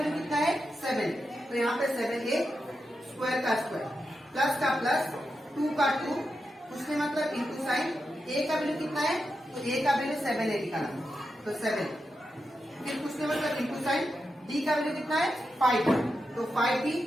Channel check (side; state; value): both; normal; correlation 0.88